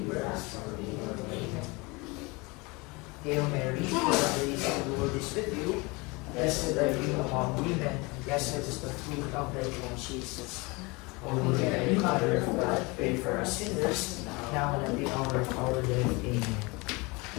us from evil. Amen. Hail Mary, full of grace, the Lord is with you. Blessed are you among women, and blessed is the fruit of thy womb, Jesus. Holy Mary, Mother of God, pray for us sinners, now and at the hour of our death. Amen.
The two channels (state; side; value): quieter; right; 26.2 dB